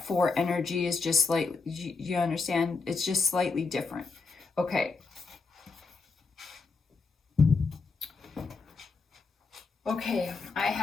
4 energy is just slightly, you understand? It's just slightly different. Okay. Okay, I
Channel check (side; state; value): right; quieter; 4.3 dB